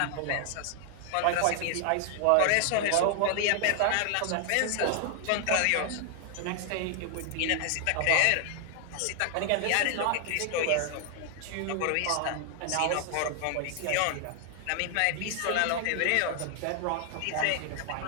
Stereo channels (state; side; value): different; both; correlation 0.00